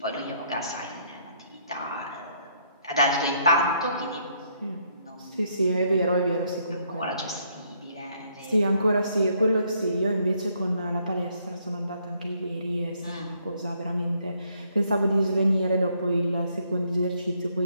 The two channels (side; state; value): both; inverted; correlation -0.70